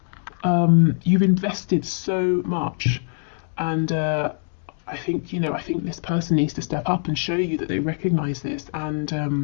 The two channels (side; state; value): right; silent; digital silence